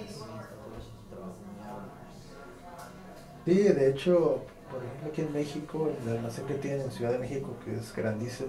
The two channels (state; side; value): identical; both; correlation 1.00